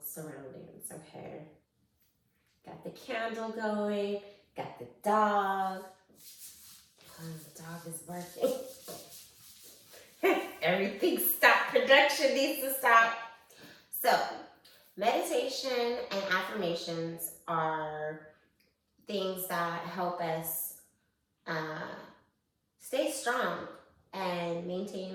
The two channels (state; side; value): identical; both; correlation 1.00